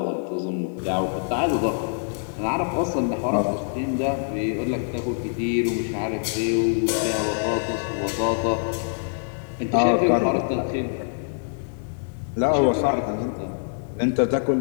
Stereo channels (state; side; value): silent; right; digital silence